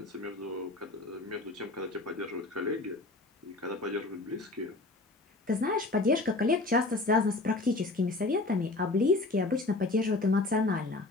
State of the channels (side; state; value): right; quieter; 3.1 dB